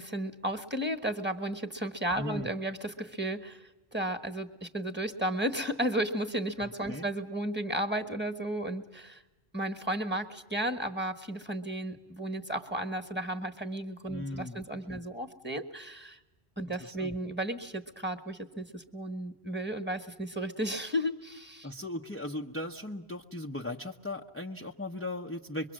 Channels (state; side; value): normal; both; correlation 0.27